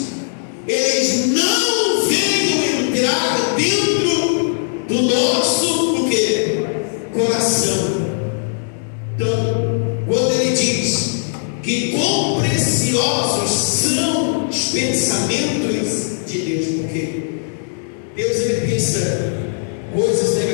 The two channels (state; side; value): silent; right; digital silence